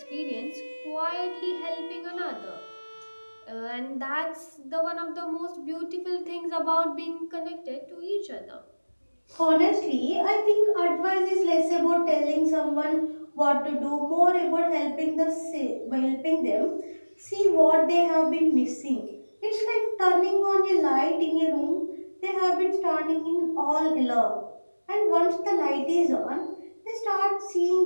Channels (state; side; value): inverted; both; correlation -1.00